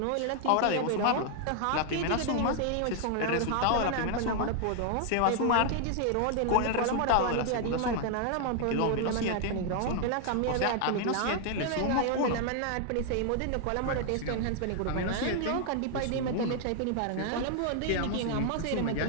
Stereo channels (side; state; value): both; different; correlation 0.00